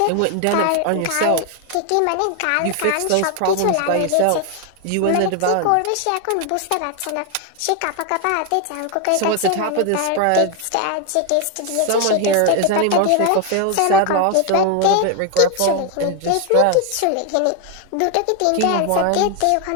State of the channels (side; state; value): both; different; correlation 0.01